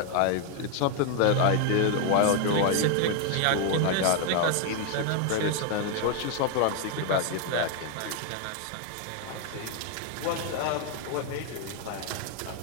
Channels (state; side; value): different; both; correlation 0.01